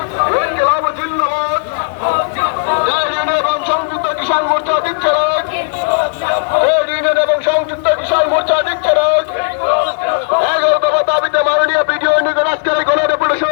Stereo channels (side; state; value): right; silent; digital silence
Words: ইনকিলাব জিন্দাবাদ, ট্রেড ইউনিয়ন এবং সংযুক্ত কিষাণ মোর্চা দিচ্ছে না, ট্রেড ইউনিয়ন এবং সংযুক্ত কিষাণ মোর্চা দিচ্ছে না। 11 দফা দাবিতে মাননীয় বিডিও নিকট আজকের